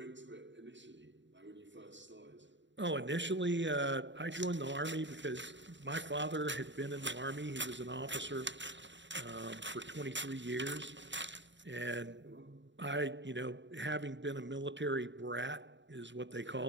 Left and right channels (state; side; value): late; left; 0.53 ms